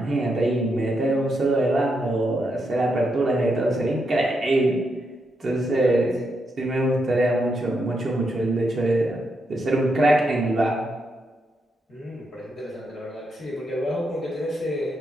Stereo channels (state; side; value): normal; both; correlation 0.82